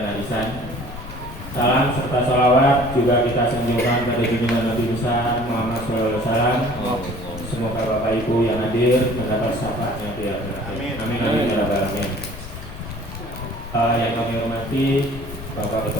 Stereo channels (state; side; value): noise; left; rumble, 12 dB below the sound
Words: arisan. Salam serta salawat juga kita sanjungkan pada junjungan Nabi besar Muhammad SAW. Semoga Bapak Ibu yang hadir mendapat syafaatnya di akhirat. Amin amin ya rabbal alamin. Yang kami hormati Bapak